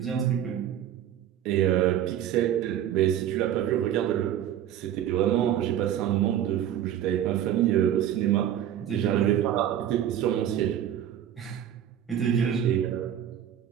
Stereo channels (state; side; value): quieter; left; 10.7 dB